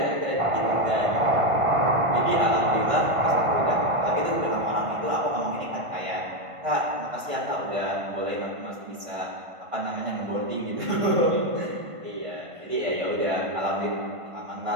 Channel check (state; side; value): late; left; 1.5 ms